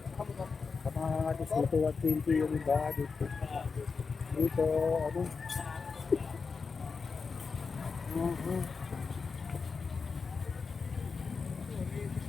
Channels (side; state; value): right; quieter; 4.9 dB